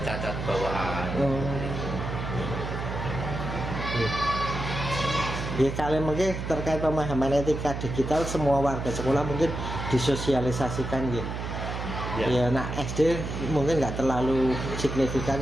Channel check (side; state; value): right; noise; hum, 5 dB below the sound